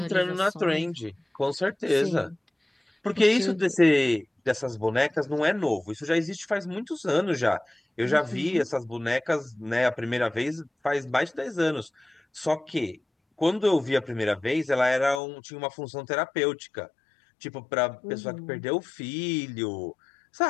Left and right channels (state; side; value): drops out; right; at 15.2 s